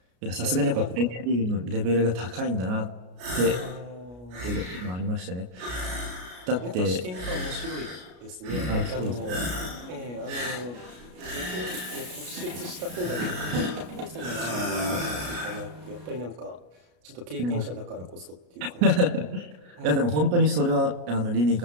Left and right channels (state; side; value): late; left; 33 ms